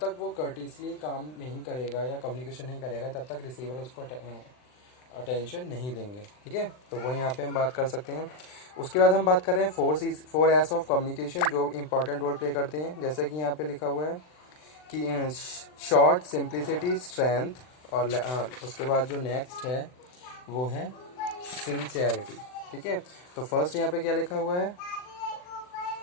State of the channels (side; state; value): right; late; 39 ms